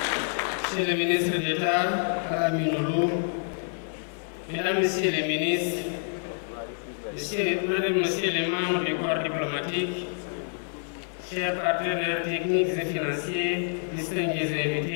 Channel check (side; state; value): right; silent; digital silence